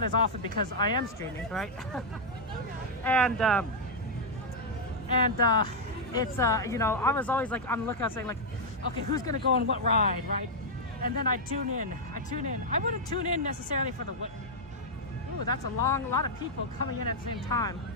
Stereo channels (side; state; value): both; normal; correlation -0.03